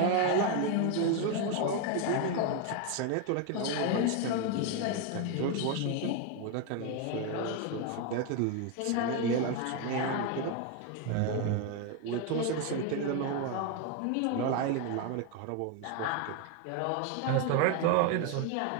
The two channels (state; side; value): different; both; correlation 0.01